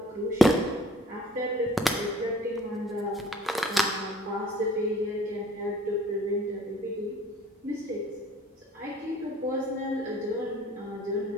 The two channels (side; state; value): both; normal; correlation 0.53